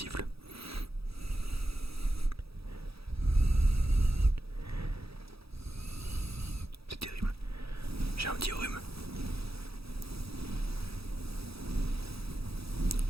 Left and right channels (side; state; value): left; late; 0.77 ms